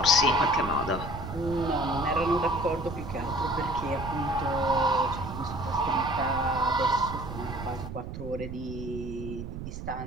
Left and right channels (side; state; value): right; noise; rumble, 8 dB below the sound